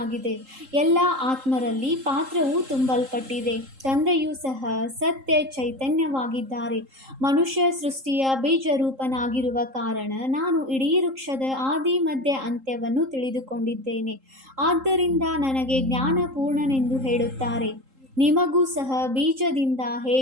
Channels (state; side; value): late; left; 3.8 ms